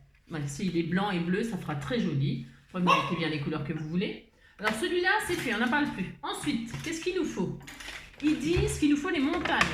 Voilà, s'il est blanc et bleu, ça fera très joli. Vous mettez bien les couleurs que vous voulez. Alors, celui-là, c'est fait. On n'en parle plus. Ensuite, qu'est-ce qu'il nous faut? Ils disent qu'il nous faut les montagnes.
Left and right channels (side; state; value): both; identical; correlation 1.00